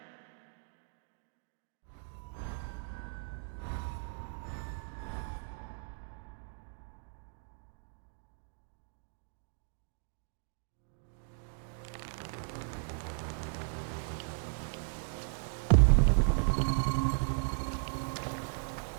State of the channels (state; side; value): silent; left; digital silence